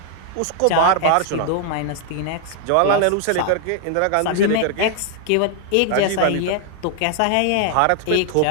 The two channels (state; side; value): different; both; correlation 0.00